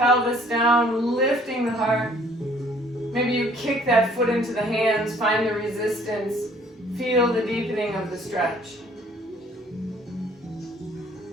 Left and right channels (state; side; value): normal; both; correlation 0.58